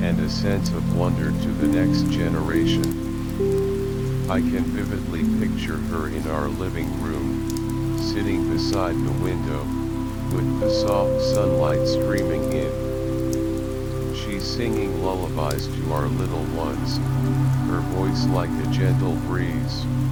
and a sense of wonder to the next generation. I can vividly picture her in our living room, sitting beside the window, with the soft sunlight streaming in. She's singing lullabies to our little ones, her voice like a gentle breeze.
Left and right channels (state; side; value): identical; both; correlation 1.00